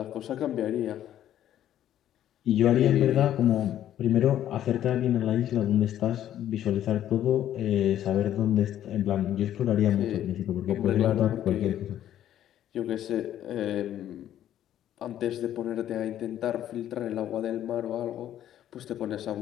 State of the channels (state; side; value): quieter; right; 11.5 dB